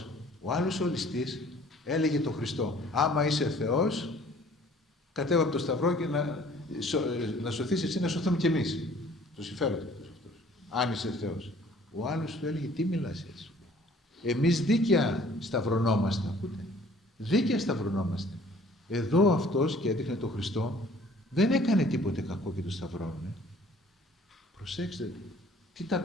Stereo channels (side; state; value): both; normal; correlation 0.54